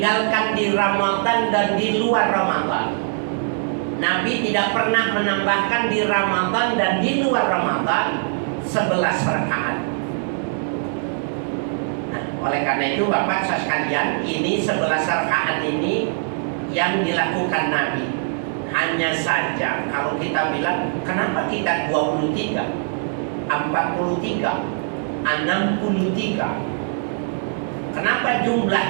di Ramadan dan di luar Ramadan. Nabi tidak pernah menambahkan di Ramadan dan di luar Ramadan 11 rakaat. Oleh karena itu Bapak sekalian, ini 11 rakaat ini yang dilakukan Nabi. Hanya saja kalau kita bilang, kenapa kita 23, 43, 63? Kenapa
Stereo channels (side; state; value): left; silent; 59 dB below the other